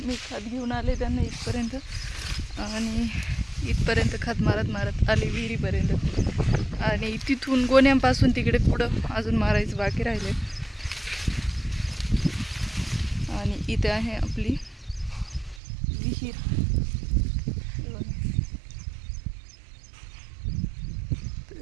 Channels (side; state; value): left; drops out; at 15.6 s